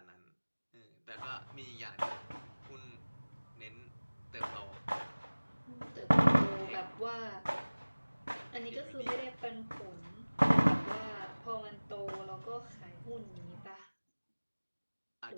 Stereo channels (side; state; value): both; inverted; correlation -1.00